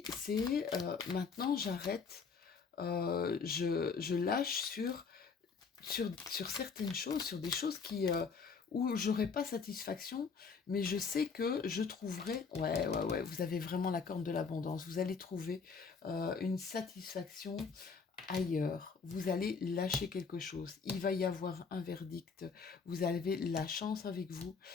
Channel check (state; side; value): quieter; right; 5.3 dB